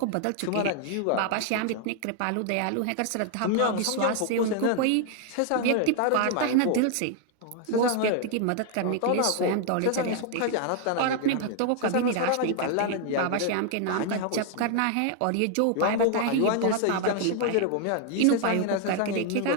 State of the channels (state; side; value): different; both; correlation 0.00